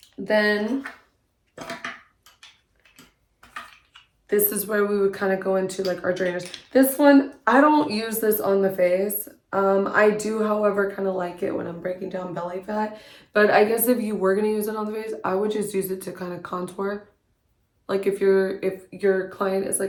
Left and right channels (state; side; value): identical; both; correlation 1.00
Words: then this is where we would kind of go into like our drainers. This one, I don't use this on the face. I do, however, kind of like it when I'm breaking down belly fat. But I guess if you were going to use it on the face, I would just use it to kind of contour. Like if your client is